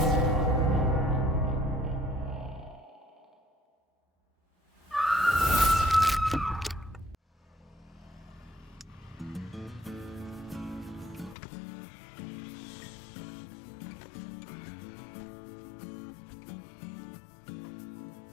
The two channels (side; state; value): right; drops out; at 11.4 s